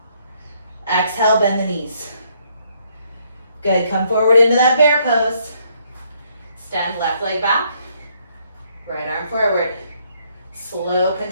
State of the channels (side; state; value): both; inverted; correlation -0.70